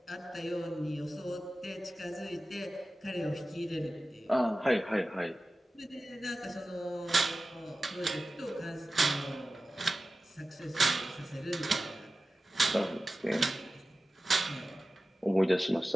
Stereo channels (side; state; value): both; normal; correlation 0.95